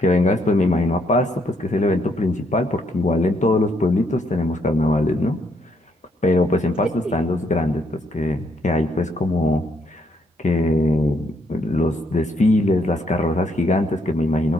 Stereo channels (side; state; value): both; normal; correlation 0.72